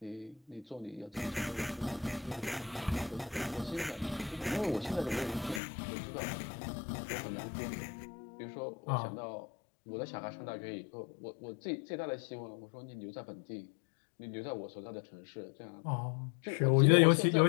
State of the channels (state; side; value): drops out; right; at 5.6 s